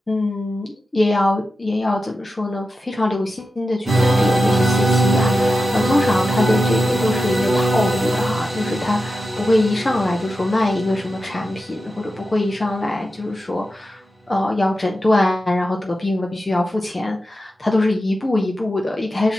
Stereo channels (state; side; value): normal; both; correlation 0.91